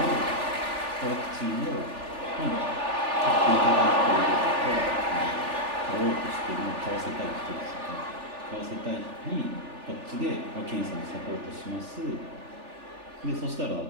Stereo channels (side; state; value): left; late; 3.4 ms